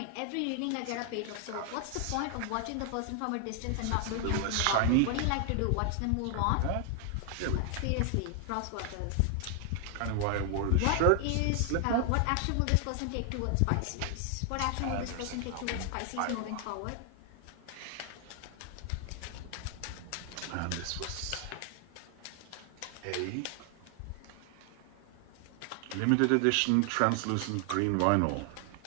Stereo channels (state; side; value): different; both; correlation 0.00